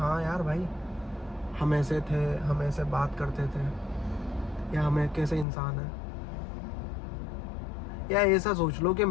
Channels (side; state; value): right; drops out; at 5.5 s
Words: यार भाई हम ऐसे थे, हम ऐसे बात करते थे, या हम कैसे इंसान है। या ऐसा सोच लो कि